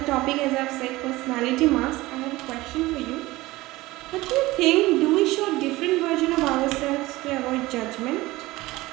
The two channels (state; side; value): quieter; left; 19.2 dB